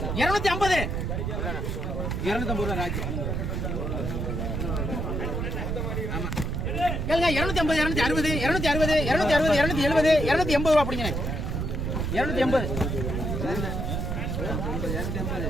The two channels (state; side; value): noise; right; rumble, 2 dB below the sound